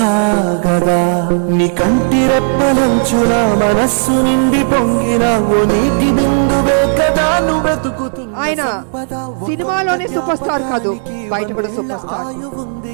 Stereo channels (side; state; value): left; silent; 71 dB below the other